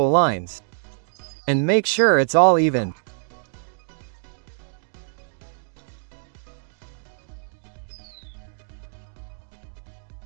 lines. And make sure it's all even.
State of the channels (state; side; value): silent; left; digital silence